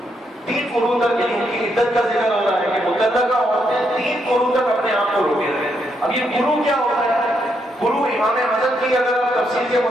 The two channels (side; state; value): both; normal; correlation 0.78